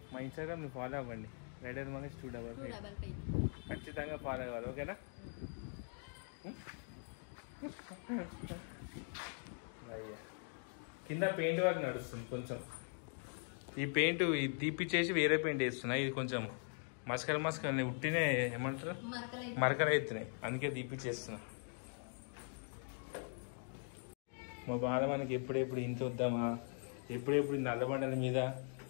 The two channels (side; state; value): right; silent; 50 dB below the other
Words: మా ఇన్స్టాగ్రామ్ మీరు ఫాలో అవ్వండి, రైడర్ మనకి స్టూడెంట్ ఖచ్చితంగా ఫాలో అవ్వాలి, ఓకేనా? కింద పెయింట్ వర్క్ నడుస్తుంది కొంచెం. ఈ పెయింట్ తీపిచ్చేసి వేరే పెయింట్ వేస్తున్నాయి. ఇది కొంచెం మస్కలు ఉట్టినే ఏమంటారు మరకలు అవుతున్నాయి, అందుకే తీపిచ్చేస్తున్నా. మా బాధ మనకి ఎప్పుడెప్పుడు ఇంత వద్దామా, ఎప్పుడెప్పుడు నల్లబండల మీద